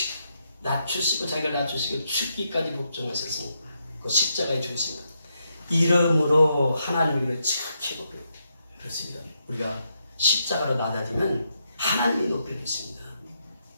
낮추시고 자기를 낮추시고 죽기까지 복종하셨으니 그 십자가에 죽으십니다. 이름으로 하나님을 지극히 높여 그렇습니다. 우리가 십자가로 낮아지면 하나님이 높여주십니다.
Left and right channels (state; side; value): inverted; both; correlation -0.80